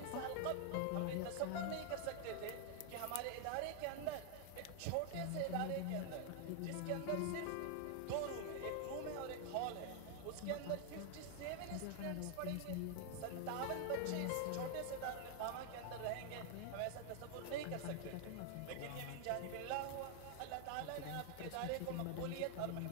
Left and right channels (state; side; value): different; both; correlation 0.00